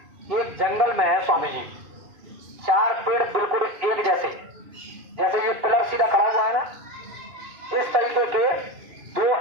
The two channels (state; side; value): late; left; 2.5 ms